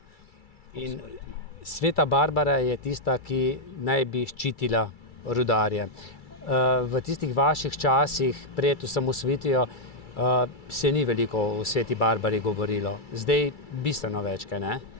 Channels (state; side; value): late; right; 2.3 ms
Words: In Sveta Barbara je tista, ki naj bi ščitila rudarje. V tistih vaših časih pred osamosvojitvijo se ni veliko o Sveti Barbari govorilo. Zdaj bistveno več, kaj ne?